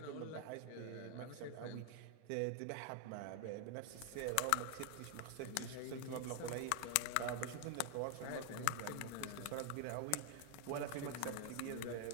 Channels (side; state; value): both; different; correlation 0.00